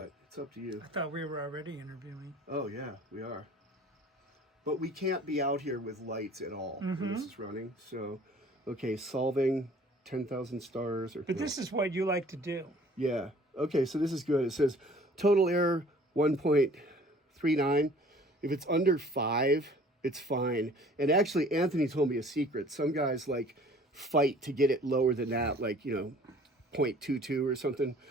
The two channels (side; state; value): both; normal; correlation 0.52